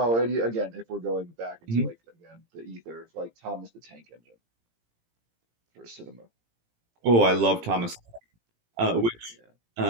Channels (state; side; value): late; left; 18 ms